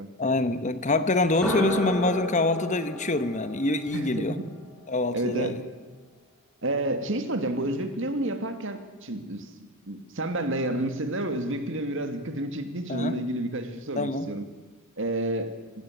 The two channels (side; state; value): both; normal; correlation 0.25